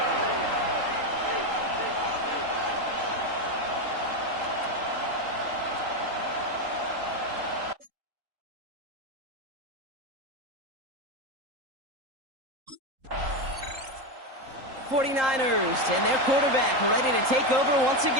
'49ers and their quarterback ready to take over once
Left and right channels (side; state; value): left; late; 3.8 ms